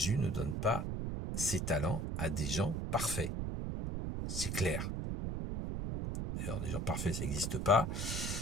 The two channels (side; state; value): right; noise; rumble, 2 dB below the sound